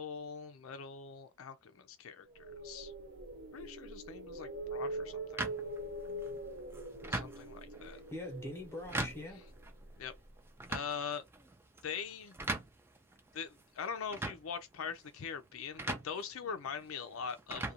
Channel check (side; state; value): both; normal; correlation 0.07